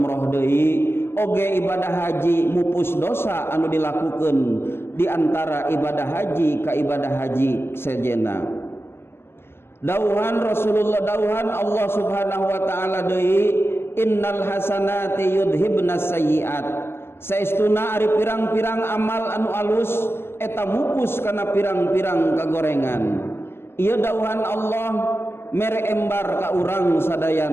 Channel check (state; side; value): late; right; 0.12 ms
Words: deui. Oge ibadah haji mupus dosa anu dilakukeun di antara ibadah haji ka ibadah haji sejenna. Dauhan Rasulullah, dauhan Allah Subhanahu wa taala deui, innal hasanati yudhibnas sayyiat. Saestuna ari pirang-pirang amal anu alus eta mupus kana pirang-pirang kagorengan. Ieu dauhan Allah mere embar ka urang